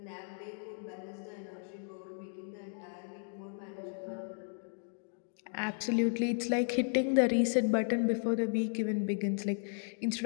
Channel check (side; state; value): right; silent; 55 dB below the other